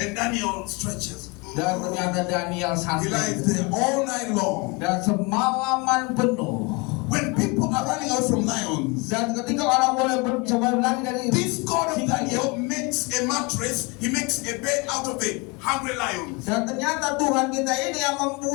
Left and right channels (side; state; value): right; quieter; 27.9 dB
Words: And Daniel stretches. Dan ternyata Daniel He santai. lies there all night long. Dan semalaman penuh. When people are running away from lions, Dan ketika orang boleh coba lari dari this God of singa, Daniel makes a mattress, he makes a bed out of the hungry lions. dan ternyata Tuhan kita ini yang